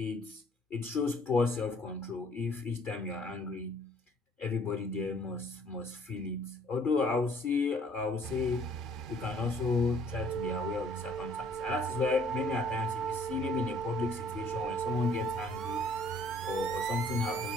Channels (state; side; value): normal; both; correlation 0.59